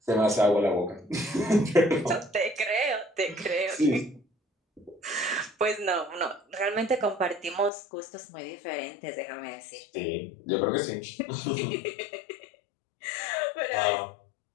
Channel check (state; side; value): drops out; right; at 7.7 s